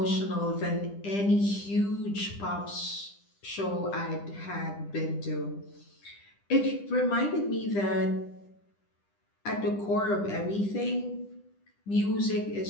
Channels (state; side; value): late; right; 10 ms